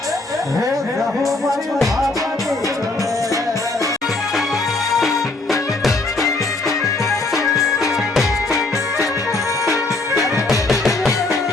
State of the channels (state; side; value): quieter; right; 3.2 dB